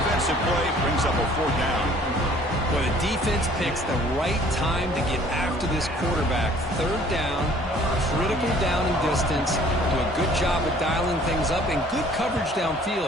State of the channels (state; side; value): normal; both; correlation 0.55